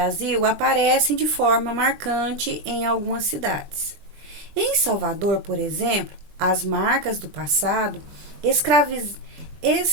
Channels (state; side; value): late; left; 20 ms